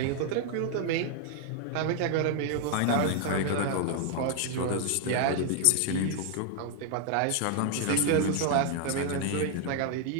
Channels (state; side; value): different; both; correlation 0.00